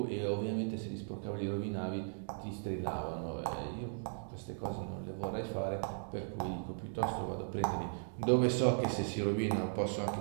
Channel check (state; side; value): silent; left; digital silence